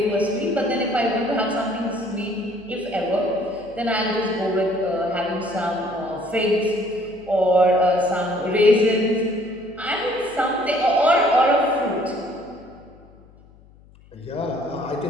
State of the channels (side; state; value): left; noise; hum, 26 dB below the sound